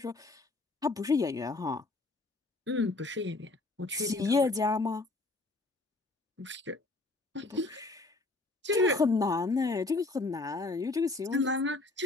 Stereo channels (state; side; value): quieter; right; 3.2 dB